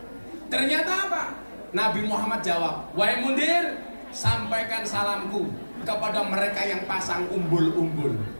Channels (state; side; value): inverted; both; correlation -1.00